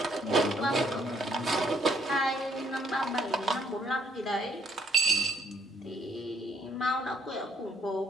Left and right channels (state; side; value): normal; both; correlation 0.68